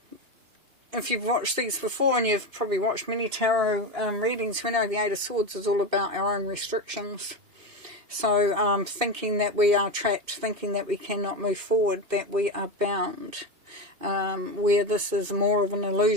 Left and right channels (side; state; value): left; late; 2.8 ms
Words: If you've watched these before, and you've probably watched many tarot readings, we know the Eight of Swords is all about our own restrictions. So, thinking that we are trapped, thinking that we cannot move forward, that we are bound, where this is more of an